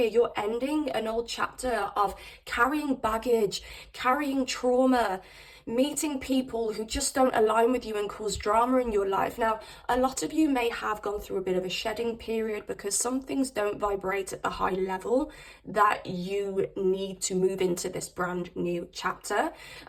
you're ending an old chapter of carrying baggage, carrying trauma, meeting people who just don't align with you and cause drama in your life. Now, a lot of you may have gone through a bit of a shedding period because some things don't vibrate at the high level that you need to move into this brand new chapter.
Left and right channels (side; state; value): both; identical; correlation 1.00